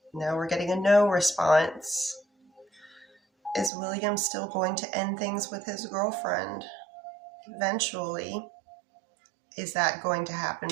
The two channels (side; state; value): left; drops out; at 3.7 s